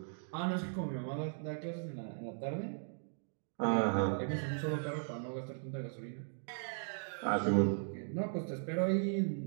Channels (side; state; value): left; silent; digital silence